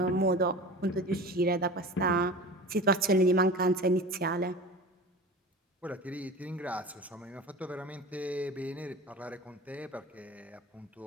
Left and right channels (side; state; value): both; normal; correlation 0.34